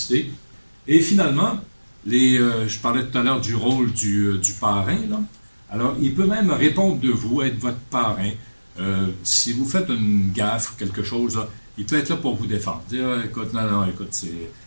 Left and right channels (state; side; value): inverted; both; correlation -1.00